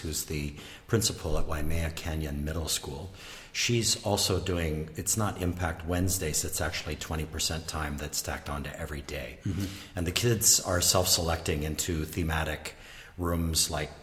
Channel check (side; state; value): both; identical; correlation 1.00